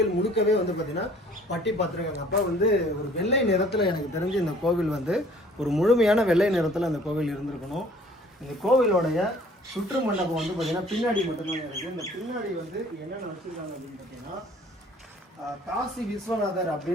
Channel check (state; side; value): normal; both; correlation 0.54